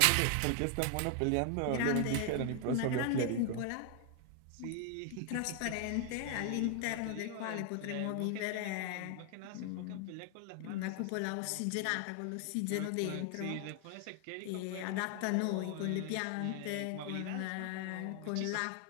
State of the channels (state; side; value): different; both; correlation 0.00